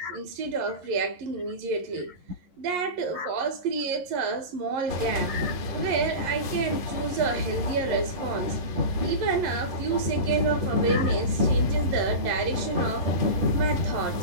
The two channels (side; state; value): left; late; 11 ms